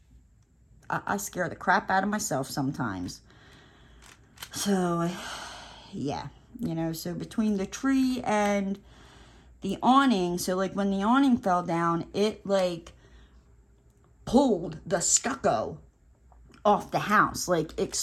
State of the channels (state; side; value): identical; both; correlation 1.00